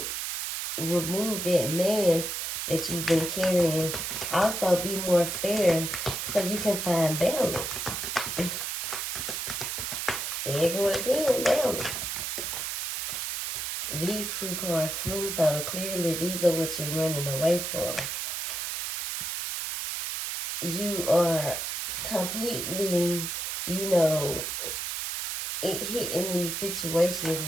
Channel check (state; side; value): noise; right; hiss, 3 dB below the sound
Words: remove that mask that you've been carrying. Also, be more fair so you can find balance. There you go again, balance. These two cards flew, so clearly these are what you're running away from. You are completely, hitting these situations